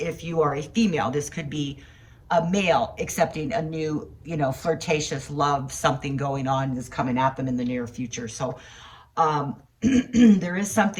you are a female, this could be a male accepting a new, you know, flirtatious love, something going on that's coming at them in the near future. So there is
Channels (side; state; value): both; identical; correlation 1.00